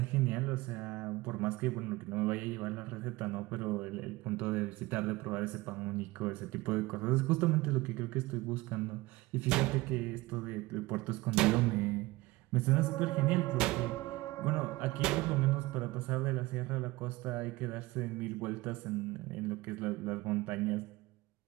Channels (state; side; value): quieter; left; 20.6 dB